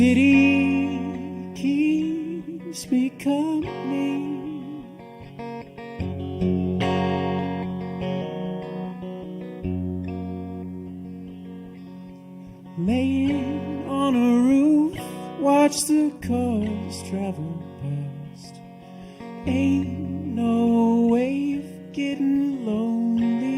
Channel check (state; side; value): identical; both; correlation 1.00